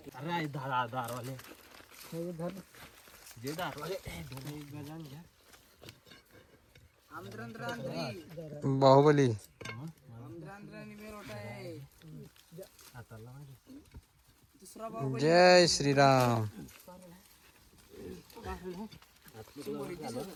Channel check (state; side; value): identical; both; correlation 1.00